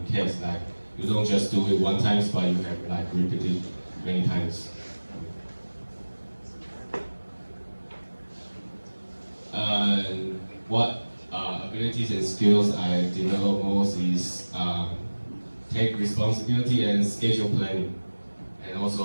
CAS. Like you don't just do it one time, but you have like repeated many times. What abilities and skills I develop most is take responsibility and schedule planning, and also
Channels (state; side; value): inverted; both; correlation -1.00